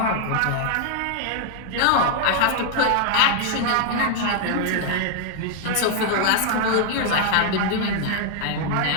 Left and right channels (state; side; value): different; both; correlation 0.00